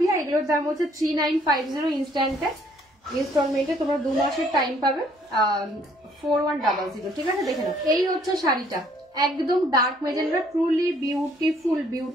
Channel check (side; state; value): both; normal; correlation 0.63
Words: এগুলোর দাম হচ্ছে 3950 ইনস্ট্যান্টে, ইনস্টলমেন্টে তোমরা 2 মাসের টাইম পাবে, 4100, ঠিক আছে। দেখে নাও, এই হচ্ছে শাড়িটা, একদম dark magenta, truly beautiful,